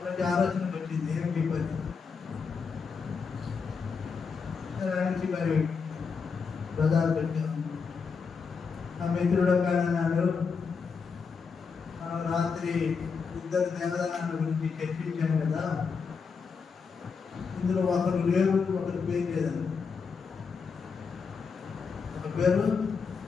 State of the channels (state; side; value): quieter; right; 5.5 dB